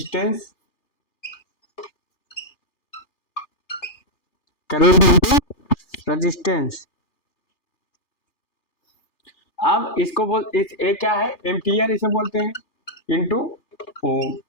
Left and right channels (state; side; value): late; right; 3.3 ms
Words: current into resistance. अब इसको ये क्या है? एम्पियर इसे बोलते हैं, इंटू ओम